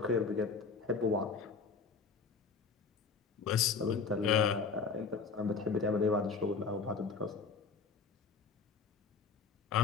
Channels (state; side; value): quieter; right; 4.9 dB